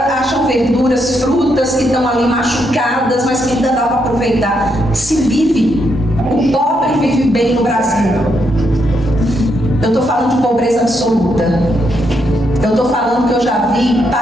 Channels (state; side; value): normal; both; correlation 0.78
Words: verduras, frutas que estão ali machucadas, mas que ainda dá para aproveitar. Se vive, o pobre vive bem no Brasil. Eu estou falando de pobreza absoluta. Eu estou falando que eu já vi